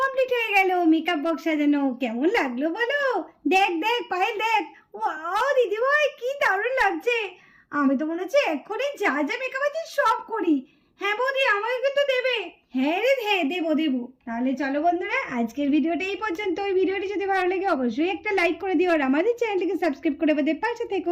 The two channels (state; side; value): identical; both; correlation 1.00